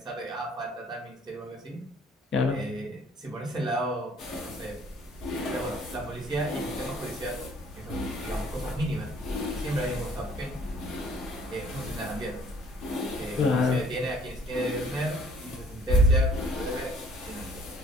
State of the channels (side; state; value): both; normal; correlation 0.57